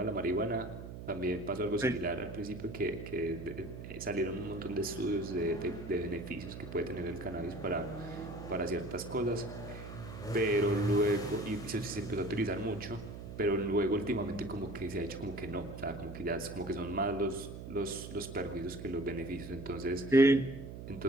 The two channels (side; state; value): right; noise; hum, 10 dB below the sound